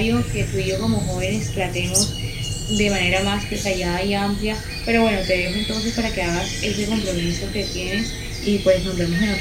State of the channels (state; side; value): identical; both; correlation 1.00